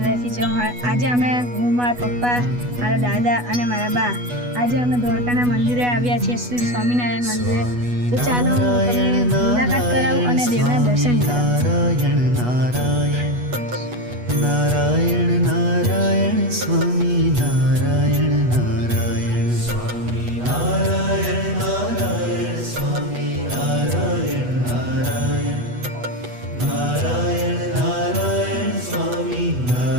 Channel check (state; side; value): late; left; 8.2 ms